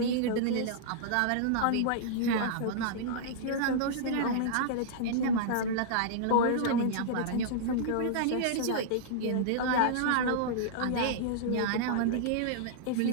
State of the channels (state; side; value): different; both; correlation -0.02